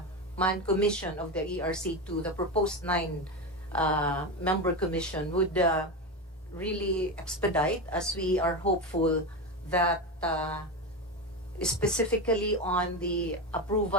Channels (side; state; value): both; normal; correlation 0.17